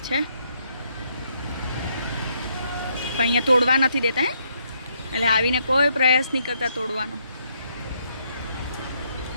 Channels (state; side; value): inverted; both; correlation -0.74